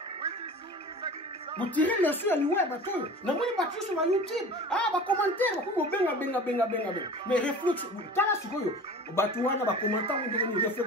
Vous tirez les leçons à liwa bato. Na moi bato sur YouTube. Ah ba commentaire ba ko benga. Mais réflexion, tala sikoyo bato wana ba commentaire on devient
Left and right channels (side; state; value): both; normal; correlation 0.38